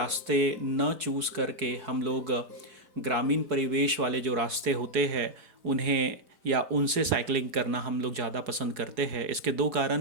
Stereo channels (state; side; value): late; left; 4.8 ms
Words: न चूज़ करके हम लोग ग्रामीण परिवेश वाले जो रास्ते होते हैं उन्हें या उनसे साइकिलिंग करना हम लोग ज़्यादा पसंद करते हैं। इसके दो